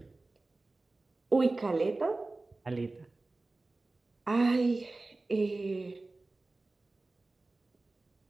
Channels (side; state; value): left; quieter; 3.2 dB